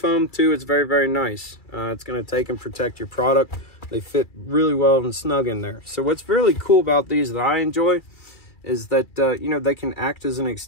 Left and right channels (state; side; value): late; right; 2.3 ms